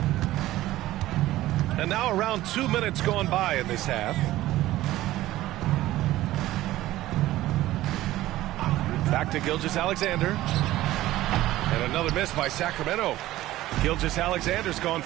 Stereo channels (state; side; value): quieter; left; 15.7 dB